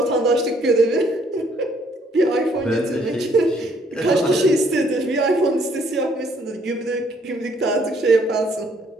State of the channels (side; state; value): both; normal; correlation 0.65